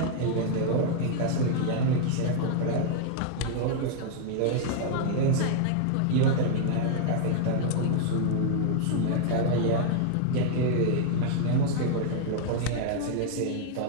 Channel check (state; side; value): different; both; correlation 0.00